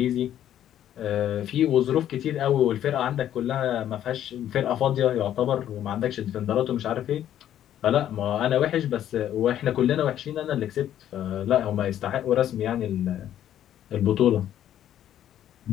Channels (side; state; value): right; quieter; 11.1 dB